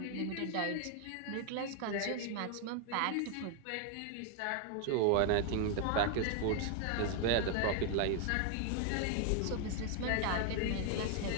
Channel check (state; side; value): different; both; correlation 0.00